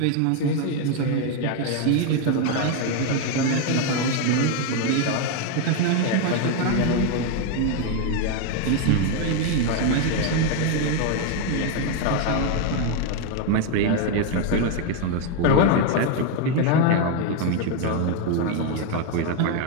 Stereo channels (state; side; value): different; both; correlation 0.01